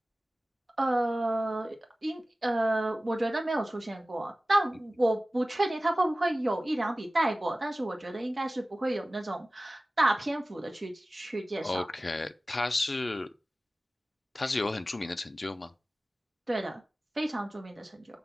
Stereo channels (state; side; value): normal; both; correlation 0.97